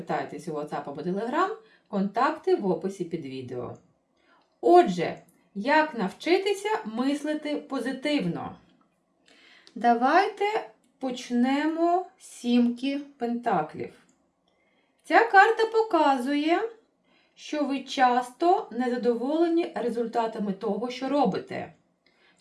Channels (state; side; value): identical; both; correlation 1.00